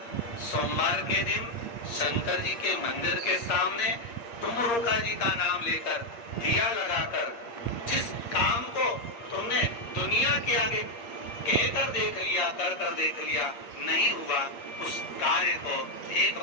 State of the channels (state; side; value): late; right; 8.6 ms